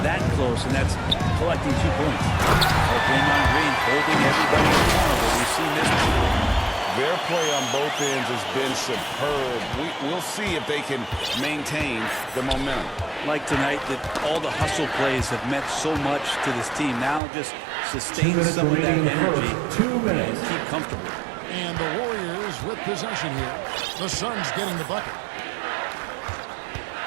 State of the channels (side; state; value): left; drops out; at 17.2 s